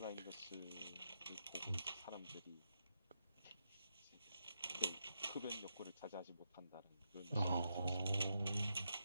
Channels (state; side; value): inverted; both; correlation -0.83